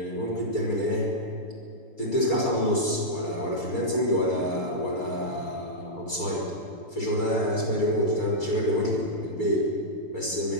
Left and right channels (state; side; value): late; right; 6.8 ms